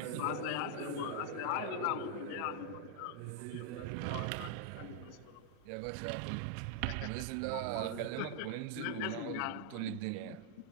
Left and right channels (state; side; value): different; both; correlation 0.00